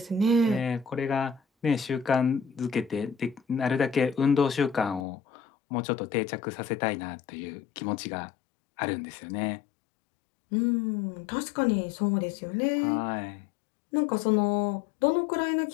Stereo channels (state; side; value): drops out; right; at 5.1 s